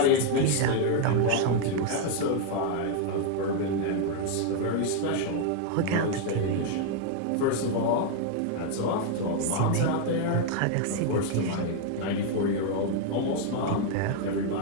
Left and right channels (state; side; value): different; both; correlation 0.00